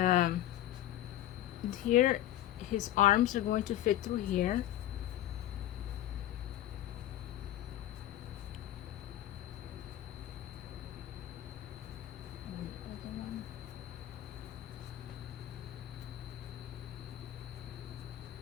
here his arms are going to fit through here.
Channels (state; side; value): quieter; right; 13.2 dB